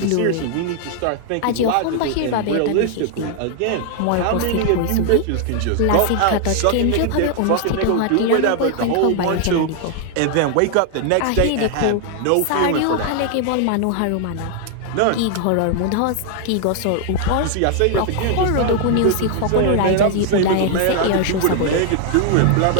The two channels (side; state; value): both; different; correlation 0.00